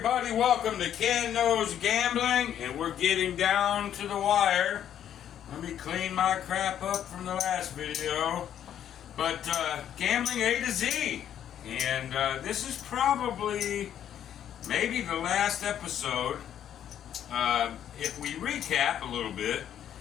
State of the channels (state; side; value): quieter; right; 10.1 dB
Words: welcome to Ken Knows Gambling, and we're getting down to the wire. Let me clean my crap up from the last video. But gambling A to Z, and this is probably maybe the last episode. If we recap a little bit,